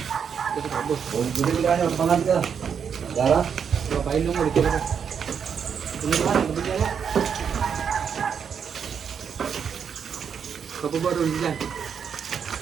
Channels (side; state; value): left; quieter; 7.2 dB